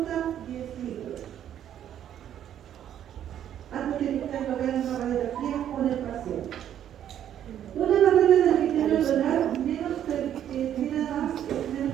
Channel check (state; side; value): quieter; left; 10.4 dB